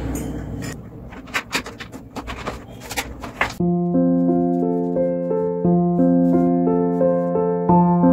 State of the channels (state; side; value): identical; both; correlation 1.00